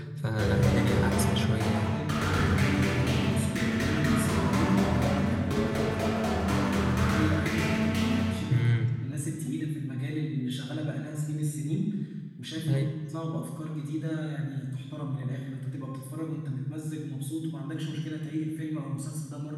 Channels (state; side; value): identical; both; correlation 1.00